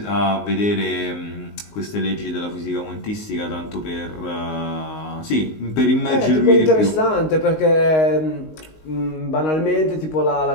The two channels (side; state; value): right; late; 19 ms